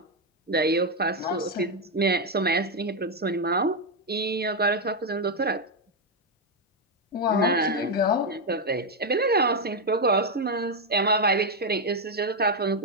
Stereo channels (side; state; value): both; normal; correlation 0.04